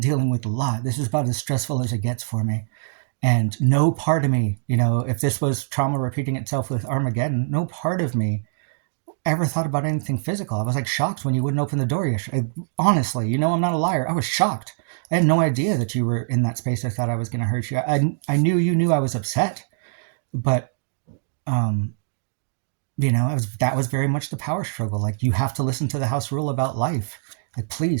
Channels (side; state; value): left; silent; digital silence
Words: with a lot. This is about as stressful as it gets for me. And no part of me, if this was trauma repeating itself with Armageddon, no part of me ever thought about anything physical. I was like shocked when you wouldn't open the door yesterday. Honestly, I'm not a liar. I was shocked. I had no idea that you were in that space. I thought I was going to hurt you. I knew you knew I was upset, but um, that was very much the power struggle. Like, you have to listen to the house rule about life. Like,